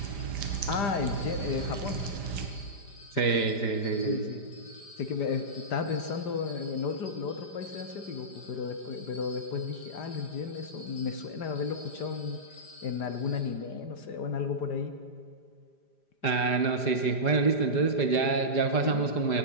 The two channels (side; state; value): right; late; 5.0 ms